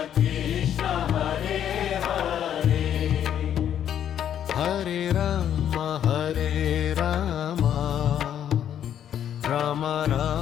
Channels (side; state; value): right; quieter; 9.8 dB